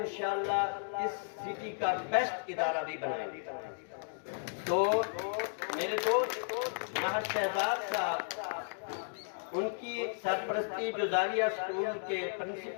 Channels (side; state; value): right; silent; digital silence